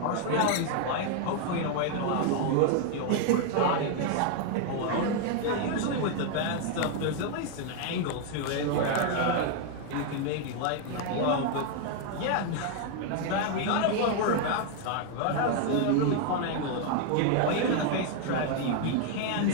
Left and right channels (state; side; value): different; both; correlation 0.00